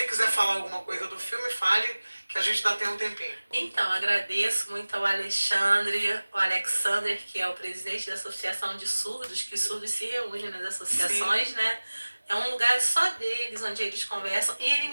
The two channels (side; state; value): both; inverted; correlation -1.00